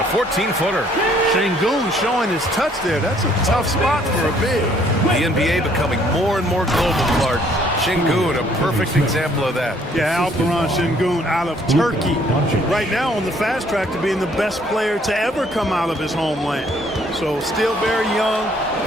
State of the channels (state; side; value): normal; both; correlation 0.63